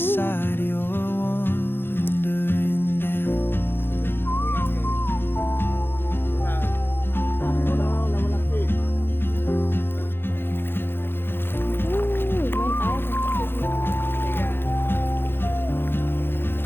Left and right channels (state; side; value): late; right; 0.10 ms